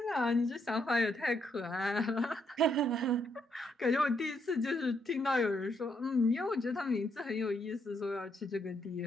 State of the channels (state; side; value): normal; both; correlation 0.75